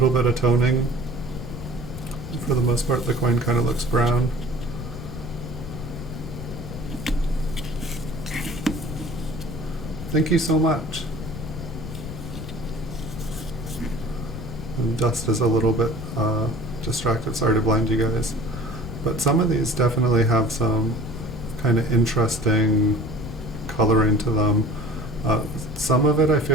bit of toning. For the most part, the coin kind of looks brown. Thank you so much. And dust is a little bit distracted. Sorry to blind you guys. But some of these definitely have some kind of interesting coloring to them. Some of it I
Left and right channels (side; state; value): left; noise; rumble, 9 dB below the sound